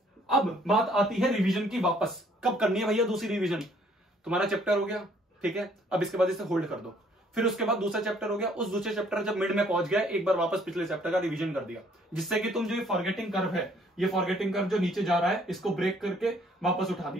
अब बात आती है रिवीजन की, वापस कब करनी है भैया दूसरी रिवीजन? तुम्हारा चैप्टर हो गया, ठीक है, अब इसके बाद इसे होल्ड कर दो। फिर उसके बाद दूसरा चैप्टर हो गया, उस दूसरे चैप्टर जब मिड में पहुंच गया, एक बार वापस पिछले चैप्टर का रिवीजन कर दिया, जिससे कि तुम जो ये फॉरगेटिंग कर्व है, ये फॉरगेटिंग कर्व जो नीचे जा रहा है, इसको ब्रेक करके वापस उठा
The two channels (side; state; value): both; normal; correlation 0.62